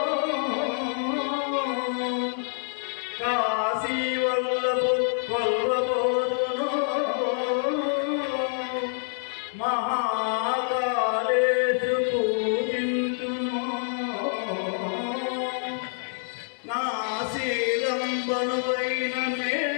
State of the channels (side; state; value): right; silent; digital silence